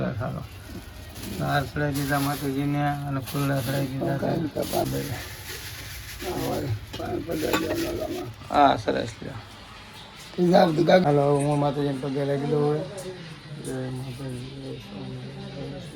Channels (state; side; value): identical; both; correlation 1.00